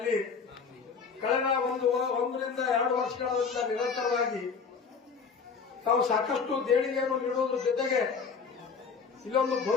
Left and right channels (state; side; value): quieter; right; 5.6 dB